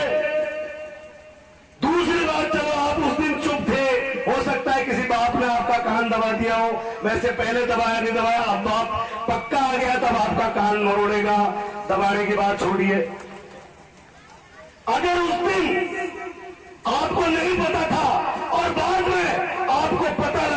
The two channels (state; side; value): identical; both; correlation 1.00